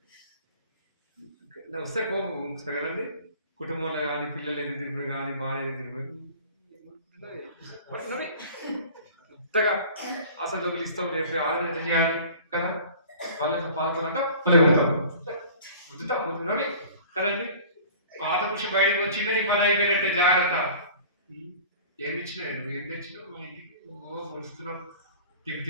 వస్తే కోపం వస్తాయి కదండి. కుటుంబంలో కానీ పిల్లలు ఎదురు తిరిగి కానీ భార్య ఎదురు తిరిగి కొత్తగా అసలు డబ్బులు ఇస్తావు రేపు ఆలోచన చేయాలి కదా. వాళ్ళ పాల్గొనంట వద్దుతావు కదండి. పాత పురుషు బయటకు వచ్చింటే నీ పని అయిపోయినట్టే, జాగ్రత్త. ఏమి ఇచ్చినావు? నువ్వు ఏం తెచ్చినావు మా ఇంటికి? వస్తున్నావు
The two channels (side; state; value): both; inverted; correlation -0.44